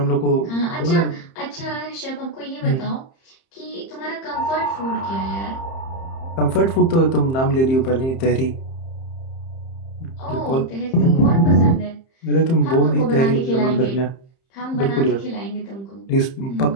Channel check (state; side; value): late; right; 30 ms